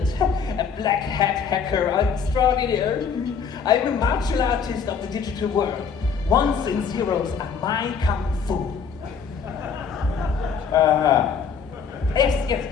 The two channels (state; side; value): quieter; right; 6.3 dB